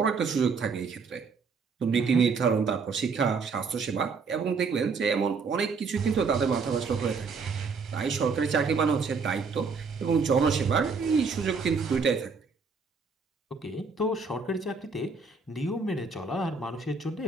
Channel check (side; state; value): left; quieter; 4.9 dB